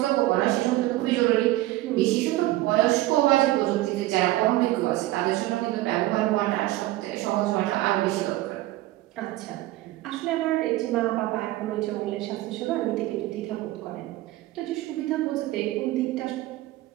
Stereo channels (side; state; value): left; quieter; 16.8 dB